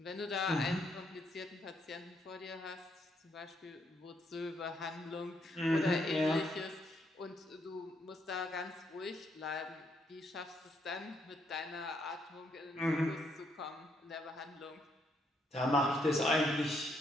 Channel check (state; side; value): normal; both; correlation 0.74